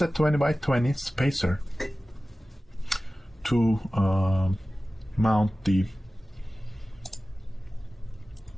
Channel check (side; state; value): both; normal; correlation 0.96